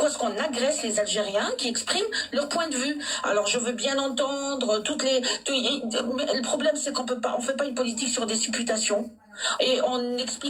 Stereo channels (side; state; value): both; identical; correlation 1.00